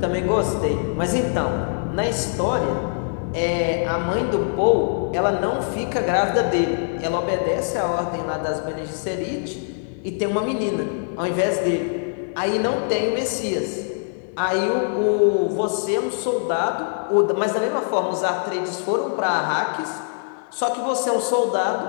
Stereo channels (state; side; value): silent; right; digital silence